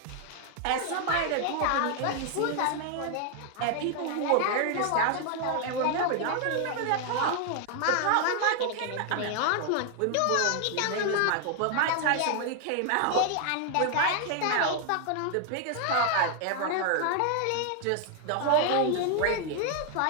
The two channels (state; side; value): different; both; correlation 0.00